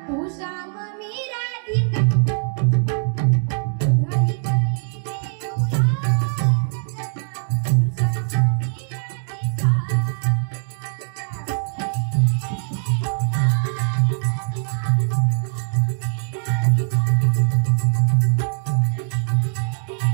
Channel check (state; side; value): silent; left; 65 dB below the other